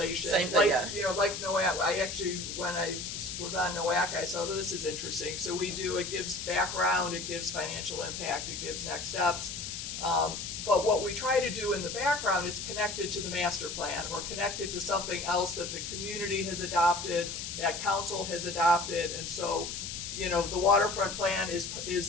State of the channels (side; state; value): left; noise; hiss, 6 dB below the sound